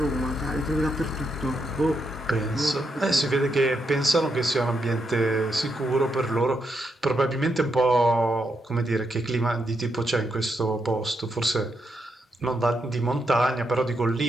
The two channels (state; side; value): normal; both; correlation 0.81